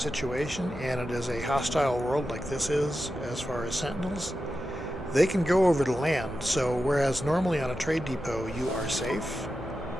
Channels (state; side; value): normal; both; correlation 0.91